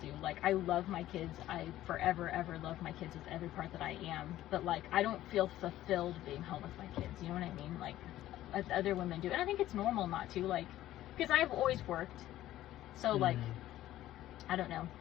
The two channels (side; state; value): right; quieter; 14.1 dB